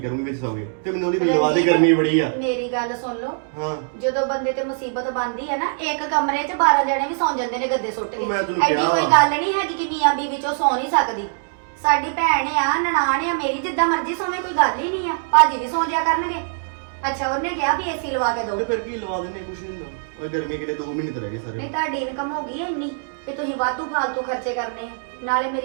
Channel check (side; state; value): left; silent; digital silence